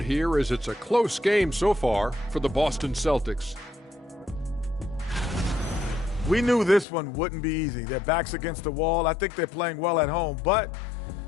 here as it's a close game so far for the Boston Celtics. We knew this one wouldn't be easy. Their backs against the wall. I think they're playing well at home, but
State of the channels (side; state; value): right; drops out; at 6.9 s